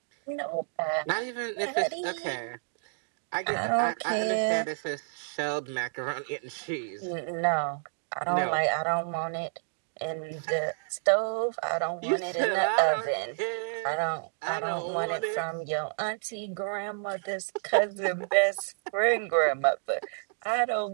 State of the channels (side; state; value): left; silent; digital silence